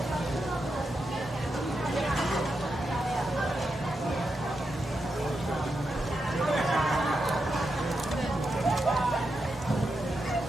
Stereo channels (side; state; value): both; normal; correlation 0.86